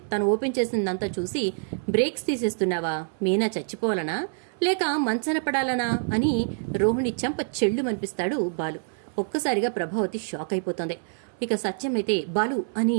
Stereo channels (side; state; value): left; silent; 60 dB below the other